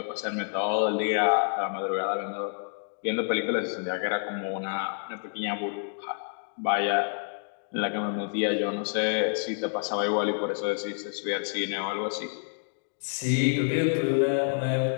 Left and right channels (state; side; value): silent; right; digital silence